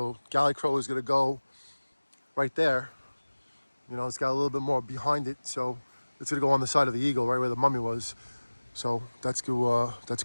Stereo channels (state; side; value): inverted; both; correlation -1.00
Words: Galley Crow is going to go right there. It's got a little bit more behind it. So it's going to go on the side of the eagle, right where the mummy was. So that's going